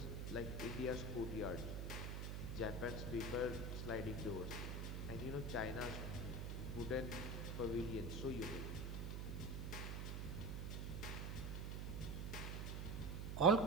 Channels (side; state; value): right; noise; hum, 2 dB below the sound